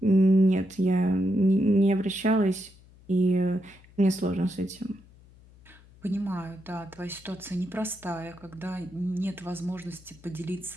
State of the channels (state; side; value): noise; left; hum, 25 dB below the sound